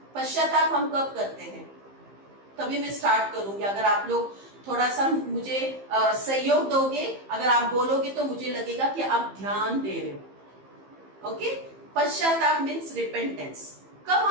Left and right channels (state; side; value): late; left; 15 ms